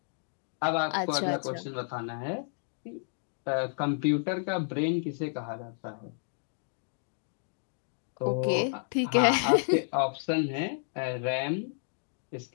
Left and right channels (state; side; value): silent; right; digital silence